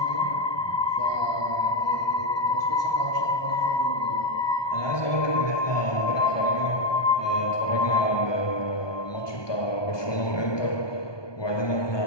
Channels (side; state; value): right; late; 1.2 ms